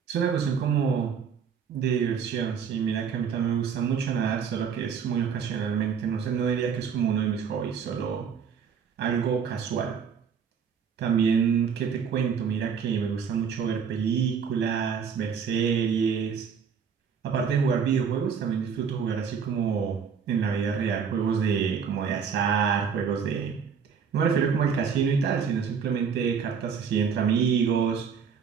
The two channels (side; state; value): left; quieter; 6.8 dB